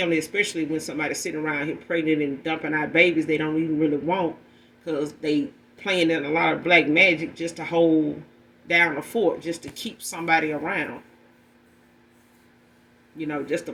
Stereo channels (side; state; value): both; identical; correlation 1.00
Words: especially when somebody's sitting around here pregnant and dumping out babies they don't even really want, because they playing in a lot of black magic just to hold down the fort, just to keep somebody around. You know, just to